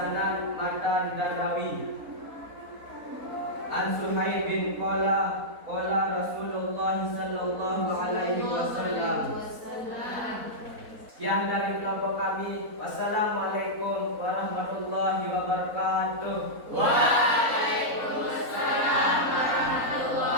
matan, dan rawi. An Suhaib bin qala Rasulullah sallallahu alaihi wasallam. Sekian dari kelompok kami. Wassalamualaikum warahmatullahi wabarakatuh. Waalaikumsalam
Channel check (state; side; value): late; left; 4.0 ms